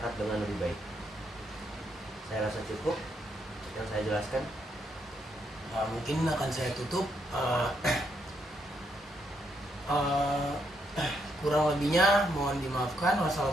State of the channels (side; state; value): both; normal; correlation 0.76